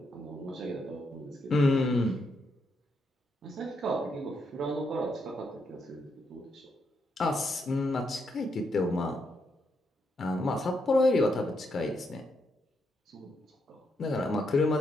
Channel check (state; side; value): normal; both; correlation 0.79